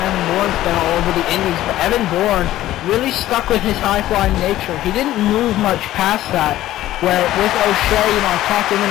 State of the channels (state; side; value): quieter; right; 14.4 dB